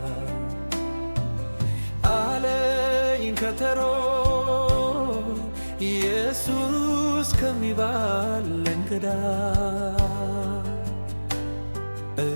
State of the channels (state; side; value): inverted; both; correlation -1.00